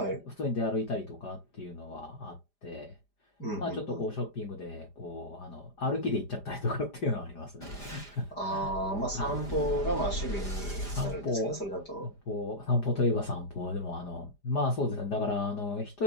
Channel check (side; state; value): right; late; 5.0 ms